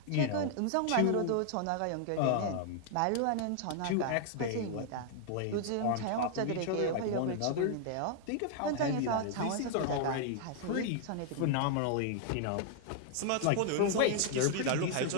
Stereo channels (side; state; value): both; different; correlation 0.00